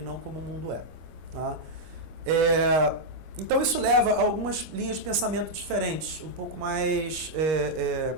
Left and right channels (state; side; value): late; left; 24 ms